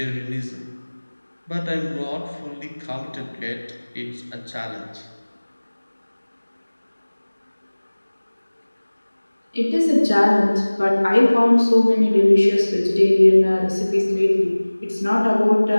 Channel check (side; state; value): both; inverted; correlation -1.00